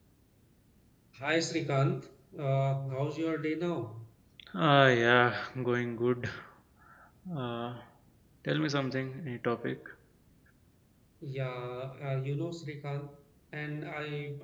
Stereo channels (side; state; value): both; identical; correlation 1.00